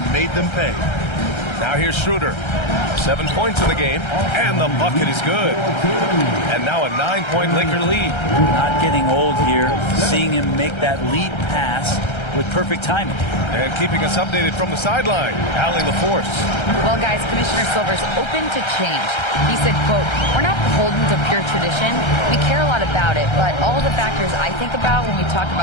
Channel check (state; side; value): late; right; 1.3 ms